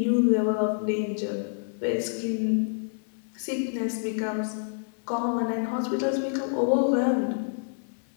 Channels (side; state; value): right; silent; digital silence